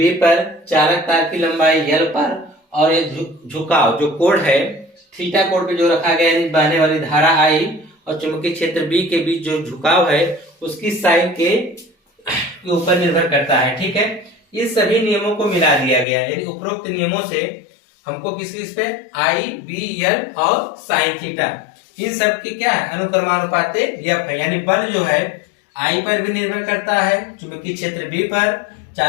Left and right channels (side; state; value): right; drops out; at 16.1 s